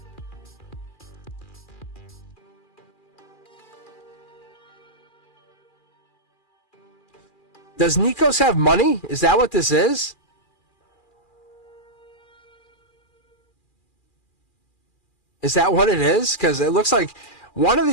Does Nikos have money? Is that what this is? Is that what it is? Because it looks like one of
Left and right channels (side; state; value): right; late; 2.4 ms